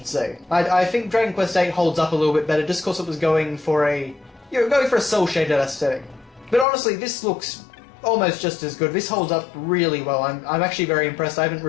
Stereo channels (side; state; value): right; drops out; at 6.7 s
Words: say. I think Dragon Quest VIII holds up a little bit better just because it was going for a cel-shaded aesthetic. But honestly, this looks almost just as good. This holds up really well. I'm actually very impressed. I haven't